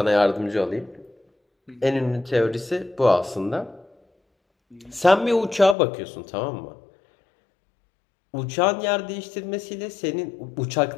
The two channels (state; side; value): drops out; right; at 5.8 s